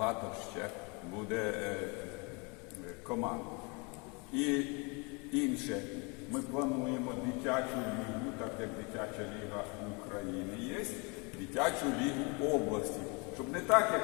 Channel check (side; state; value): right; quieter; 30.8 dB